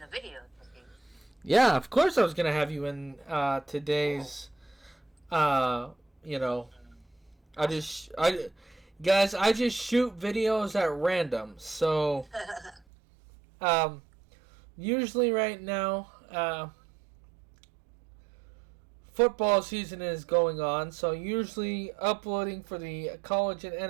the video with you. Yeah, of course I was gonna have you in today's. Guys, I just shoot videos at random. So, usually right now, football season is going on. So usually uploading for the college and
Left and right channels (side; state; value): left; drops out; at 12.8 s